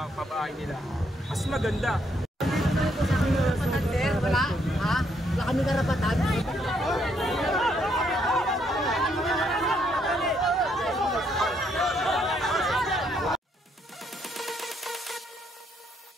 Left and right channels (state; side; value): normal; both; correlation 0.73